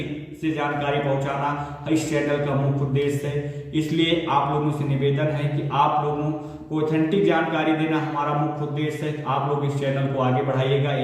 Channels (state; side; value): identical; both; correlation 1.00